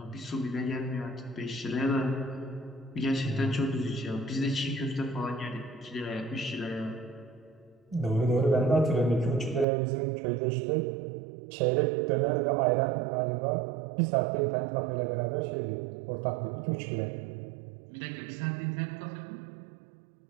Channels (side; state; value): left; drops out; at 9.7 s